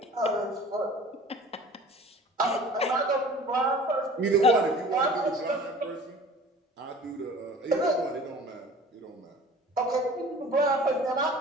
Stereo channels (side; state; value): both; normal; correlation 0.44